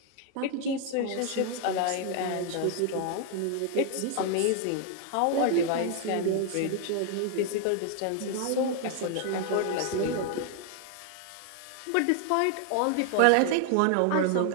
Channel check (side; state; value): both; different; correlation 0.00